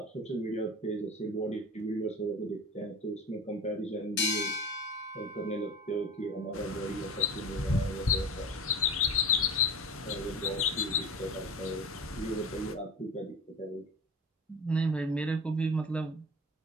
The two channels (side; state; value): both; normal; correlation 0.32